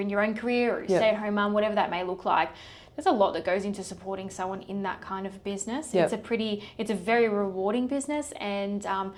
your own career or a stay-at-home mum, whatever that may look like, there's a lot that goes into supporting someone in that kind of business. It's a very rewarding business, and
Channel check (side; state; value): both; identical; correlation 1.00